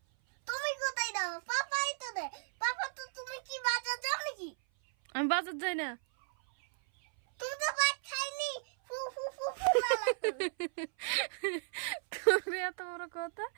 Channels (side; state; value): left; silent; 55 dB below the other